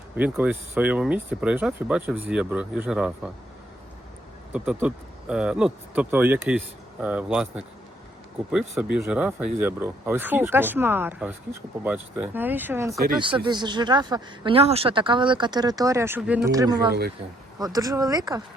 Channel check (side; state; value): both; normal; correlation 0.69